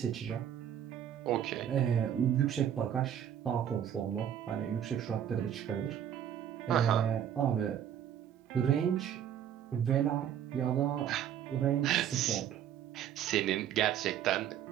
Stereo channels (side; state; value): left; quieter; 9.7 dB